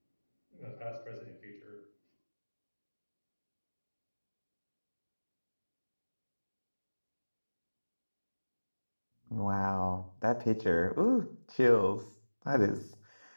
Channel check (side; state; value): both; inverted; correlation -1.00